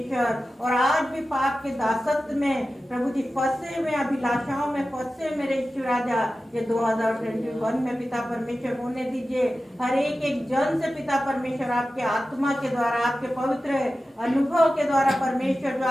और आज भी पाप के दासत्व में प्रभु जी फंसे हुए, अभिलाषाओं में फंसे मेरे ईश्वर राजा, ये 2021 में पिता परमेश्वर होने दीजिए। हर एक जन से पिता परमेश्वर आपके आत्मा के द्वारा, आपके पवित्र अनुभव के द्वारा परमेश्वर, जो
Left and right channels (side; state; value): both; normal; correlation 0.94